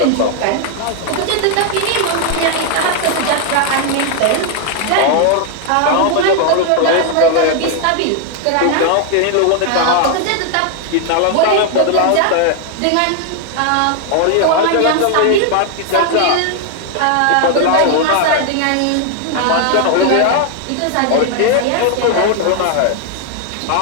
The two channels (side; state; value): both; different; correlation 0.00